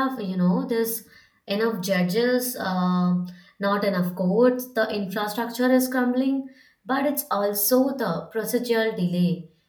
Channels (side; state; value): both; identical; correlation 1.00